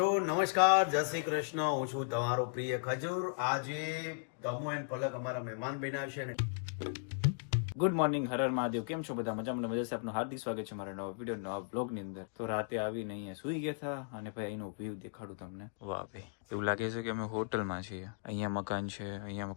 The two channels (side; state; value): right; silent; digital silence